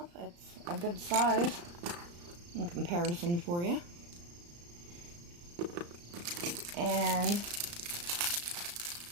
It's a good size in comparison for you. And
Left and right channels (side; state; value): left; late; 35 ms